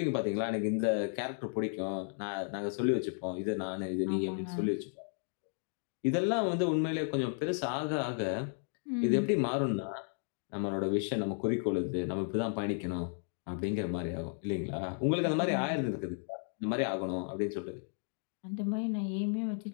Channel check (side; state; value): right; silent; 55 dB below the other